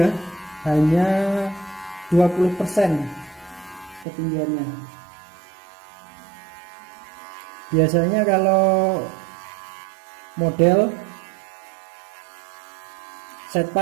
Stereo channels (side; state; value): left; drops out; at 4.0 s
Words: ya, hanya 20% ketinggiannya. Biasanya kalau model